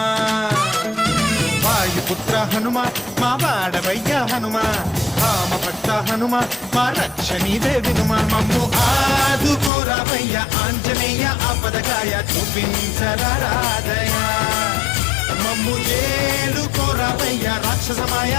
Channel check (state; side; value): drops out; right; at 9.7 s